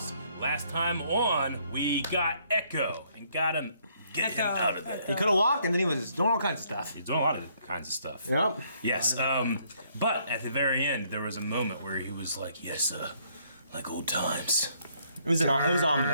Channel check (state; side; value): inverted; both; correlation -0.67